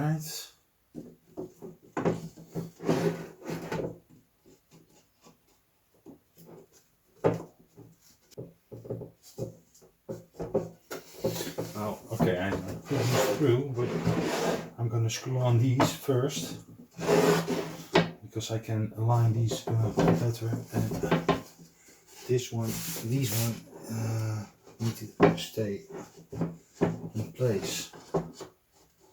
Oh, okay, I put these through, but I'm going to screw on these first because I can align these better. And these one need to stay in place.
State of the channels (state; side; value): identical; both; correlation 1.00